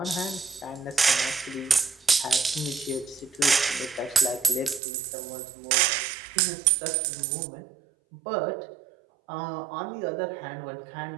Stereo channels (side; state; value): left; drops out; at 4.8 s